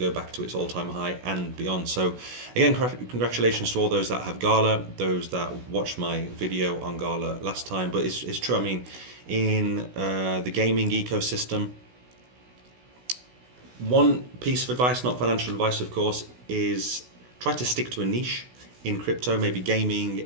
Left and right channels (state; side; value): late; left; 16 ms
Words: back to its all-time high and beyond. So again, congratulations to all those that have Gala, those that watched my video on Gala last time. But it's true. I mean, in the gaming ecosystem, one piece of advice, not financial advice, of course, is try to stick to a niche in crypto, maybe gaming,